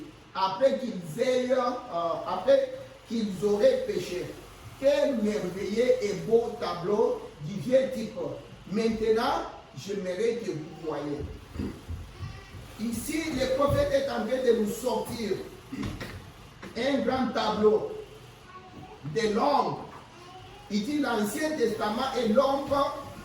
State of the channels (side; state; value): both; identical; correlation 1.00